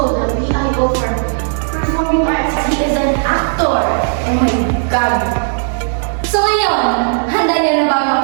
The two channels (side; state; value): left; silent; 68 dB below the other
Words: the PIO for Performing Arts. He is an actor. Oh my God! So ngayon, handa niyo na ba